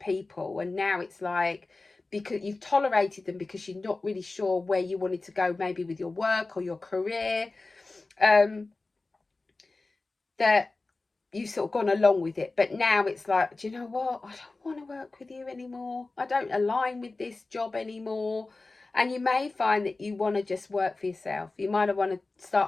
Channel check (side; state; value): right; quieter; 3.4 dB